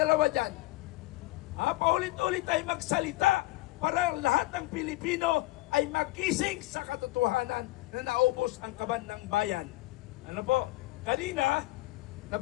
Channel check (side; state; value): right; quieter; 19.0 dB